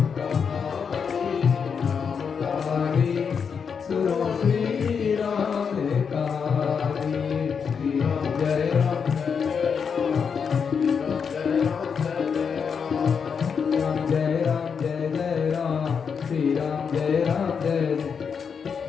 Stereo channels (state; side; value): quieter; right; 6.4 dB